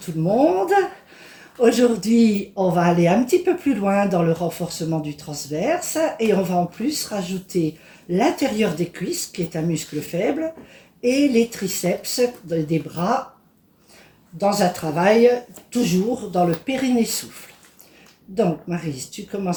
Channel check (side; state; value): both; identical; correlation 1.00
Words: le monde. Aujourd'hui, on va aller un petit peu plus loin dans le renforcement du transverse et on va en plus rajouter l'intérieur des cuisses, qui est un muscle faible, et les triceps des bras dans un travail toujours dans le périnée souffle. Donc Maryse, tu